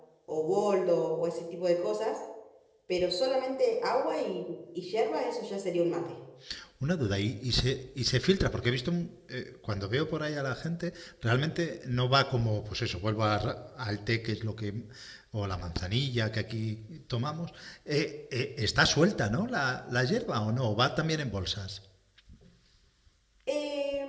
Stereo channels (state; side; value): identical; both; correlation 1.00